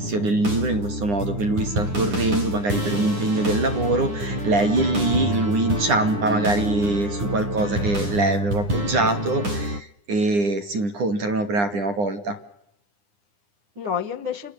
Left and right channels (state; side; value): late; left; 9.9 ms